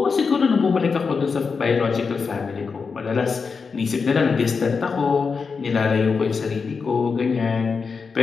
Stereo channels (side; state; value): right; quieter; 5.2 dB